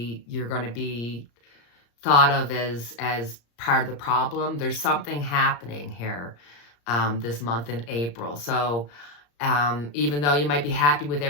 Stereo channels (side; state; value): right; late; 34 ms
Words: thought of as part of the problem. There's something happening here this month in April. So even though you might be happy with